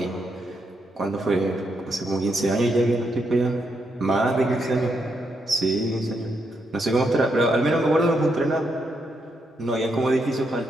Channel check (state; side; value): normal; both; correlation 0.80